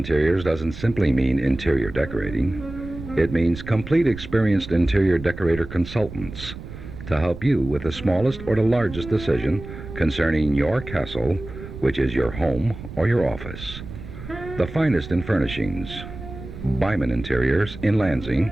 doesn't simply mean interior decorating. It means complete experienced interior decorator consultants to help you with the smallest or the largest decision concerning your castle, which is your home or your office. The finest in furnishings. Byman Interiors in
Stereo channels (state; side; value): noise; right; rumble, 12 dB below the sound